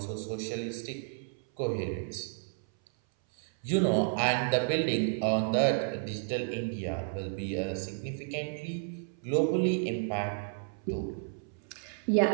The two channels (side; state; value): left; silent; 57 dB below the other